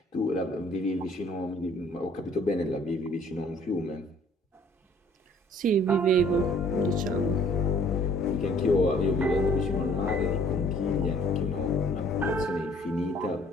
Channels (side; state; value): both; normal; correlation 0.57